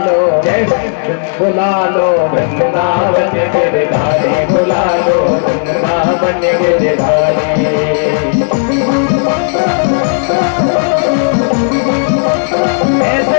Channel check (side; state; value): right; silent; digital silence